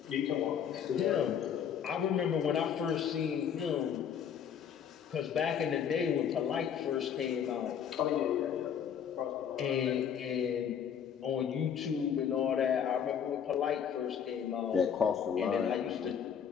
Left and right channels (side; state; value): right; quieter; 8.1 dB